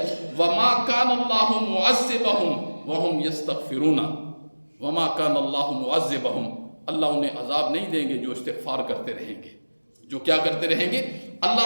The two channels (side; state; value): both; inverted; correlation -1.00